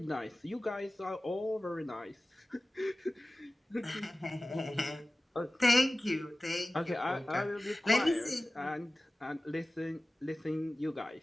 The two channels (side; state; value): both; normal; correlation 0.97